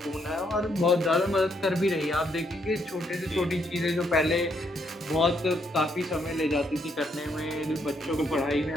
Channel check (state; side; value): normal; both; correlation 0.74